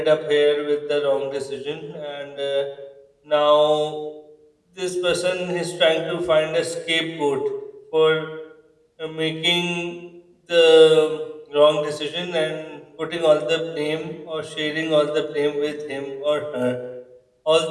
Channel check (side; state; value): both; identical; correlation 1.00